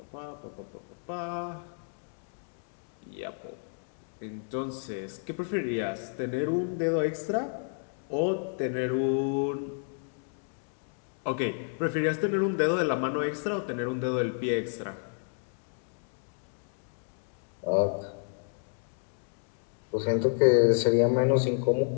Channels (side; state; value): right; silent; 57 dB below the other